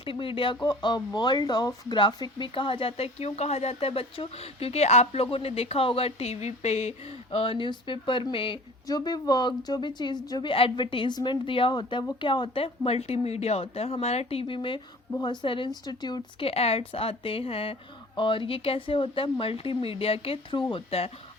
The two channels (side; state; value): both; normal; correlation 0.46